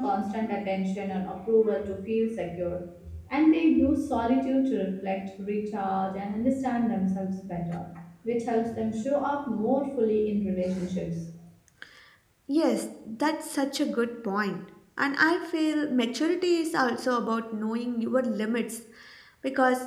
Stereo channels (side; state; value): both; identical; correlation 1.00